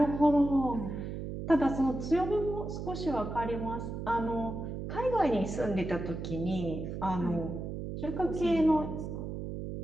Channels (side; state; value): right; noise; hum, 6 dB below the sound